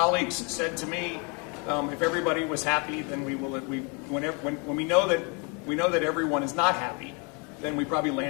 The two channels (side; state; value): right; quieter; 33.2 dB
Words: said to me, if everybody was happy, then when we know that everyone is not happy, then we probably